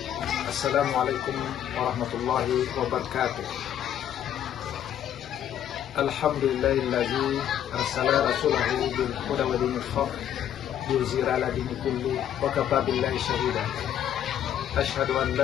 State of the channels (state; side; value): quieter; right; 10.4 dB